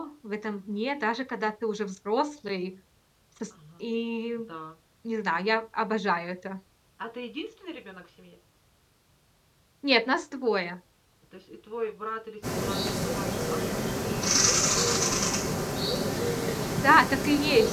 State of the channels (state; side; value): identical; both; correlation 1.00